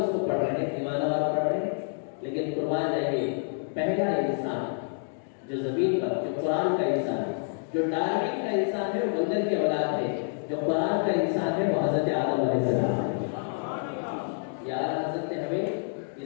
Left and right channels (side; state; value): right; silent; digital silence